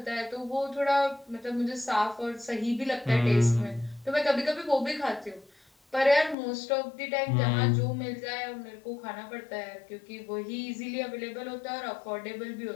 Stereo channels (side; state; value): right; drops out; at 6.4 s